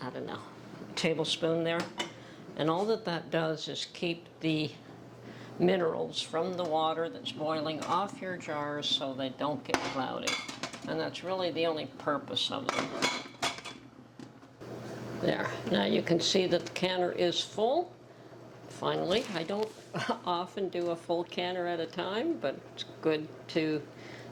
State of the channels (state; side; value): identical; both; correlation 1.00